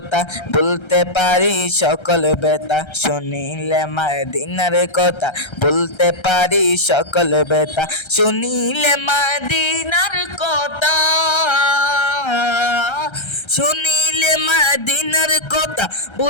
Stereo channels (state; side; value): late; right; 1.3 ms